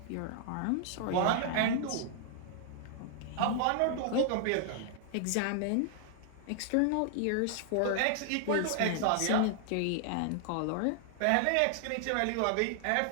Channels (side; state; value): both; different; correlation 0.00